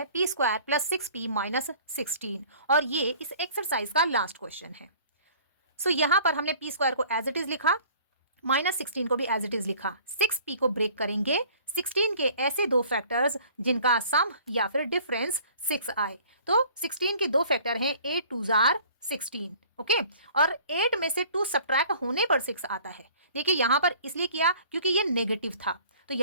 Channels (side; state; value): both; inverted; correlation -0.50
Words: p square plus 6p minus 16, और ये इस एक्सरसाइज का लास्ट क्वेश्चन है। सो यहाँ पर हमने p स्क्वायर को एज इट इज लिखा, माइनस 16 को भी एज इट इज लिखा। 6p को ब्रेक करेंगे 16 के ऐसे 2 फैक्टर्स जिनका सम या फिर डिफरेंस 6 आए। तो 16 के 2 फैक्टर हैं 8 2 जार 16। ओके, और 8 में से 2 सब्ट्रैक्ट होने पर 6 आता है। देखिए यहाँ पर इसलिए किया क्योंकि ये नेगेटिव था, तो